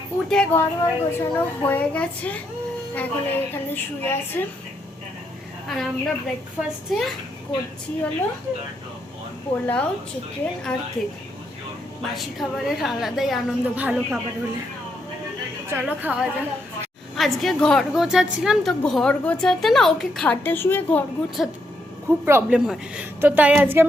উঠে ঘর গোছানো হয়ে গেছে, এখন এখানে শুয়ে আছে। আর আমরা ব্রেকফাস্টে করছি হলো পোলাও, চিকেন আর কেক। বাসি খাবারের আলাদাই আনন্দ, ভালো খাবার হলে। চলো খাওয়া যাক। আজকে ঘর গোছাচ্ছিলাম, তো ঘর গোছাতে না ওকে খাটে শুয়ে ঘর গোছাতে খুব প্রবলেম হয়, তো তাই আজকে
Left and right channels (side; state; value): both; normal; correlation 0.78